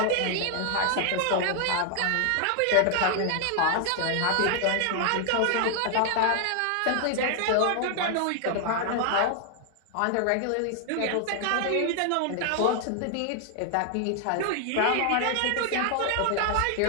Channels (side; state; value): both; different; correlation 0.00